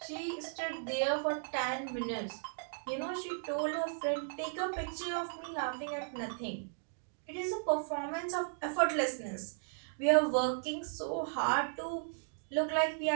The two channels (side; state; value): left; silent; digital silence